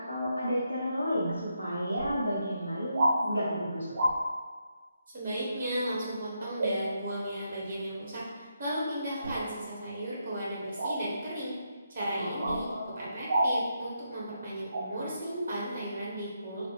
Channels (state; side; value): inverted; both; correlation -0.81